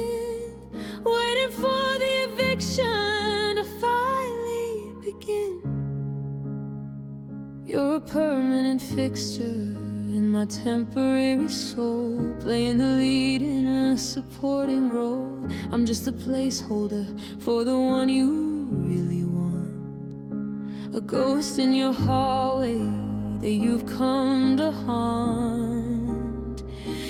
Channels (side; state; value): both; identical; correlation 1.00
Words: waiting for the eviction to finally begin. You're a permanent fixture in my temporary soul, playing the lead in a supporting role. I'm just a placeholder for the one you really want, a ghost in your hallway that you've come to haunt.